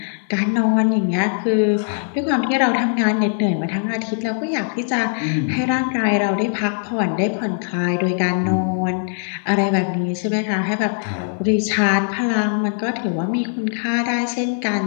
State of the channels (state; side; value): silent; right; 65 dB below the other